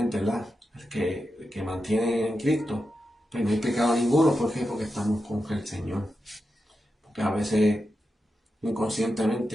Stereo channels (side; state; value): both; normal; correlation 0.89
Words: ¿verdad? El que mantiene en Cristo, pues no hay pecado ninguno. ¿Por qué? Porque estamos con el Señor. Porque a veces